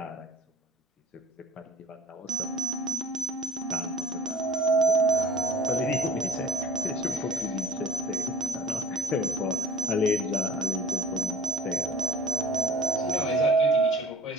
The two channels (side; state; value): both; normal; correlation 0.50